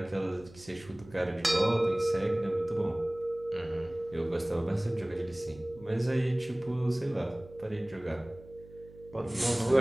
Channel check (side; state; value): right; noise; hum, 21 dB below the sound